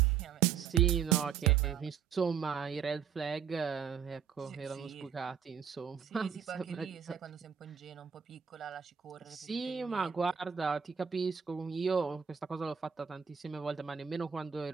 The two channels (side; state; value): left; quieter; 7.7 dB